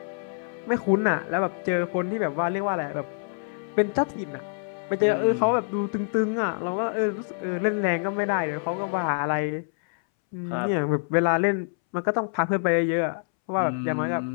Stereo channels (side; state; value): right; silent; 61 dB below the other